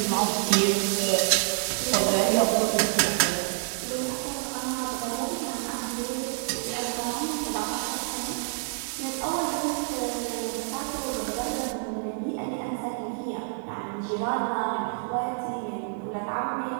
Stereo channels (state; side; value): silent; left; digital silence